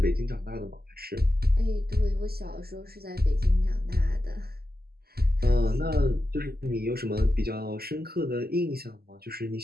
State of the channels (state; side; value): late; left; 0.45 ms